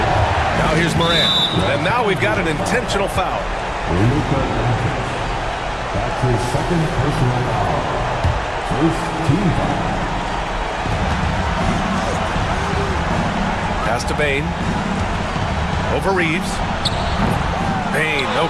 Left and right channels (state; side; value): identical; both; correlation 1.00